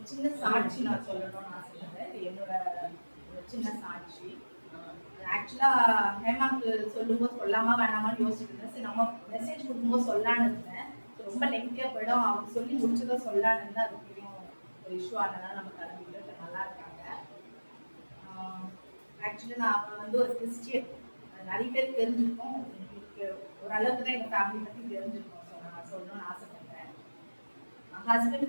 சின்ன சாட்சி நான் சொல்லணும்னு ஆசைப்படுறேன். என்னோட சின்ன சாட்சி. ஆக்சுவலா ஹேமாக்கு சொல்லும்போது சொல்லாமா வேணாமான்னு யோசிச்சுட்டு இருந்தேன். சரி நம்ம மெசேஜ் கொடுக்கும்போது சொல்லான்னு இருந்தேன். ரொம்ப நெகட்டிவா போயிடும், அவங்க சொல்லி முடிச்சதும் சொல்லான்னு இருந்தா அதுக்கும் ஒரு இஷ்யூ ஆனதுனால நம்ம கிளம்பிட்டு நல்லா இருக்காங்க. ஆக்சுவலி நான் வந்து ஒரு கிறிஸ்டியன். நிறைய பேர் தெரிஞ்சிருக்கோம், ஓரளவுக்கு தான் எங்கள் ஃபேமிலி பற்றி தெரிஞ்சிருக்கோம். ஸோ நான் சொல்லணும்னு ஆசைப்படுறேன்.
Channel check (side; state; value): both; inverted; correlation -1.00